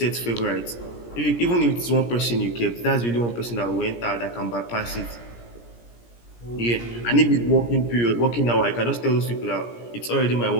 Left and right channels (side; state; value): right; late; 17 ms